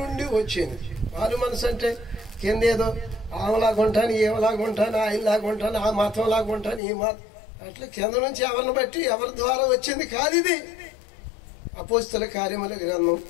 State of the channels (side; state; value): right; drops out; at 6.8 s